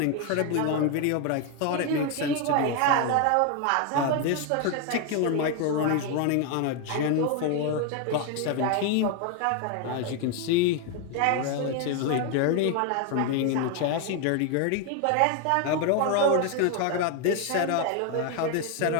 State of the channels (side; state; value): both; different; correlation 0.01